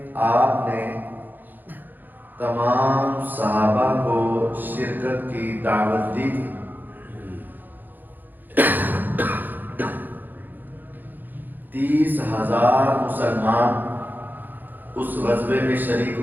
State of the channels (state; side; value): late; left; 0.087 ms